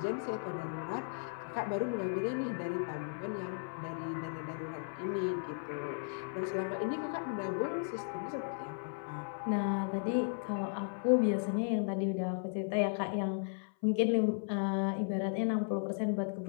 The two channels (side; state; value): right; silent; 54 dB below the other